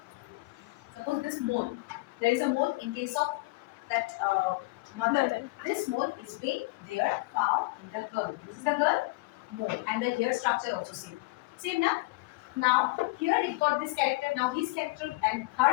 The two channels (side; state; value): right; quieter; 23.2 dB